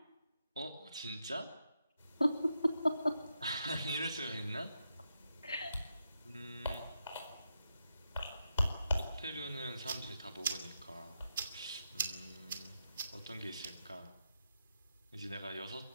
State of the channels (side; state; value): both; inverted; correlation -0.85